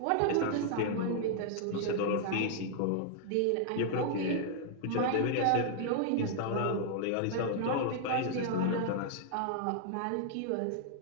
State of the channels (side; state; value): both; different; correlation -0.01